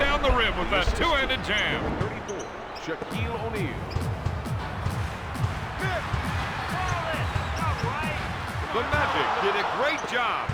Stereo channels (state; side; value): identical; both; correlation 1.00